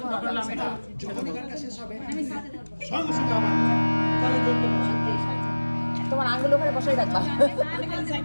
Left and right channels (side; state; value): both; inverted; correlation -1.00